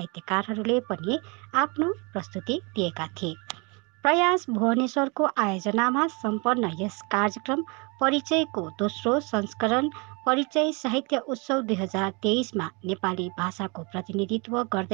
पनि आफ्नो प्रस्तुति दिएका थिए। प्रयास भुवनेश्वरको आयोजनामा सम्पन्न यस कार्यक्रम परिचयको दोस्रो संस्करण परिचय साहित्य उत्सव 2023मा नेपाली भाषाको प्रतिनिधित्व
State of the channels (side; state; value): left; quieter; 30.7 dB